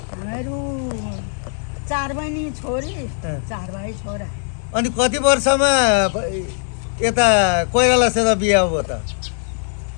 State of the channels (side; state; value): right; silent; 61 dB below the other